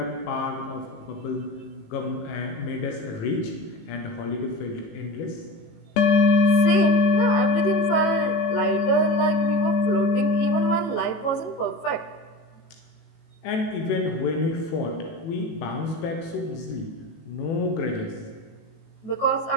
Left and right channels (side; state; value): right; late; 18 ms